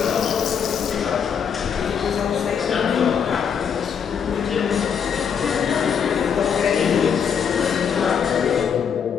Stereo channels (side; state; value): right; quieter; 7.3 dB